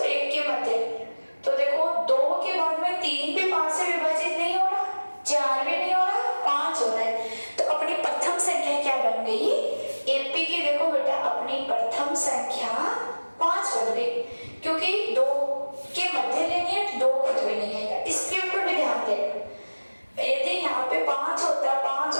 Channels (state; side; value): inverted; both; correlation -1.00